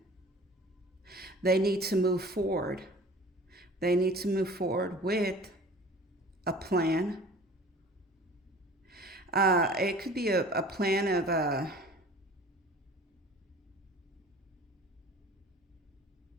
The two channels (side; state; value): both; normal; correlation 0.45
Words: they need to move forward. They need to move forward with a plan, It could be a plan